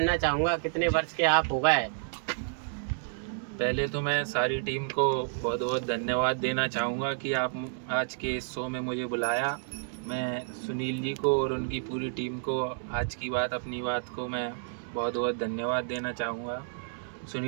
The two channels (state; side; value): silent; left; digital silence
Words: चाहूँगा कितने वर्ष के आप हो गए? पहले तो मैं सारी टीम को बहुत बहुत धन्यवाद देना चाहूँगा कि आप आज के इस शो में मुझे बुलाया। मैं सुनील जी को और उनकी पूरी टीम को आज की बात अपनी बात को मैं बहुत बहुत धन्यवाद देना चाहूँगा।